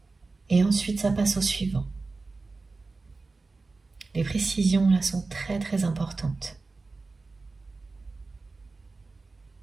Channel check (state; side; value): quieter; left; 3.7 dB